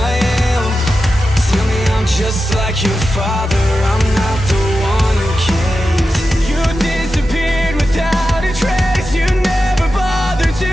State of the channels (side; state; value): both; normal; correlation 0.91